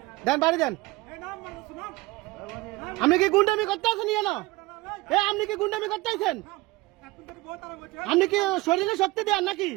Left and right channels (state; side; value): quieter; left; 21.1 dB